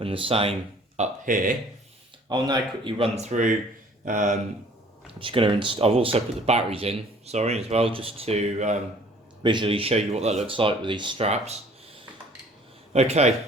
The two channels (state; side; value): normal; both; correlation 0.54